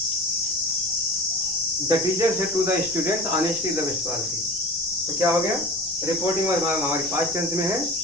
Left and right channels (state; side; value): noise; left; rumble, 22 dB below the sound